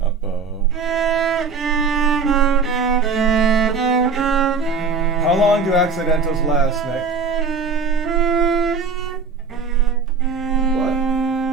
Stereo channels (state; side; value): quieter; left; 4.9 dB